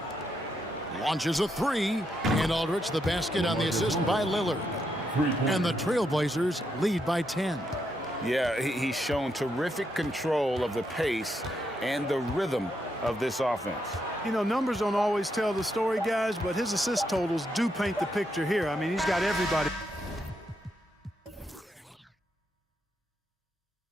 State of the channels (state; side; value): normal; both; correlation 0.80